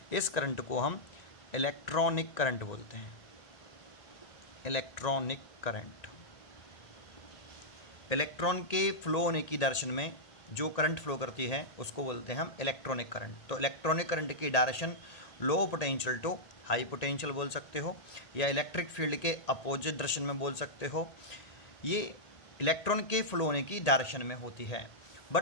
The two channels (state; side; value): late; right; 1.9 ms